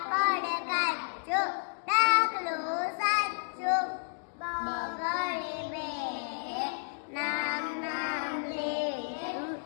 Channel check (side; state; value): right; silent; digital silence